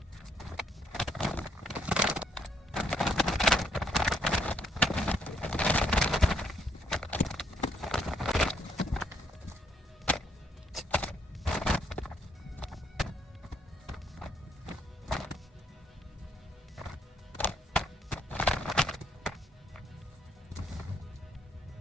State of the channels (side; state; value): both; normal; correlation 0.72